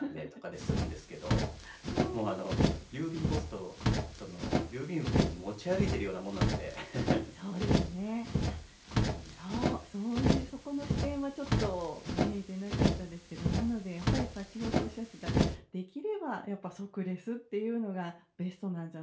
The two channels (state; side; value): identical; both; correlation 1.00